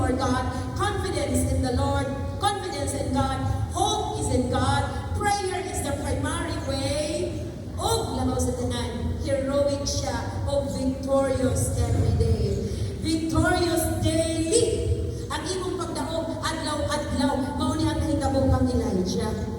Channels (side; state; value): both; identical; correlation 1.00